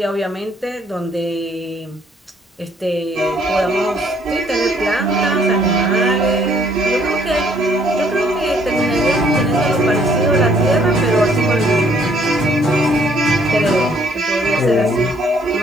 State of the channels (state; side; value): normal; both; correlation 0.64